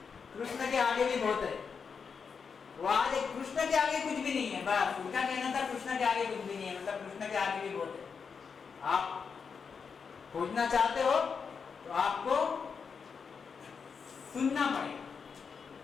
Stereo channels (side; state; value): right; quieter; 5.9 dB